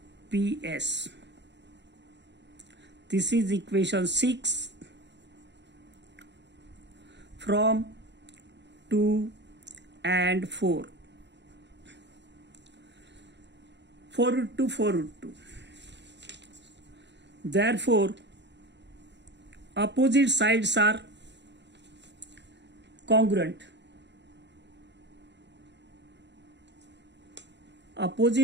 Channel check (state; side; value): late; left; 0.51 ms